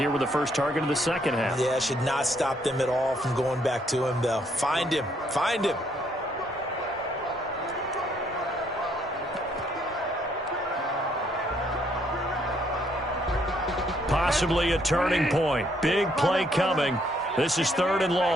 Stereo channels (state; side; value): normal; both; correlation 0.69